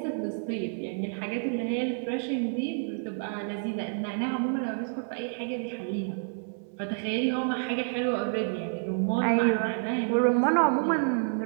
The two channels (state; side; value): silent; left; 59 dB below the other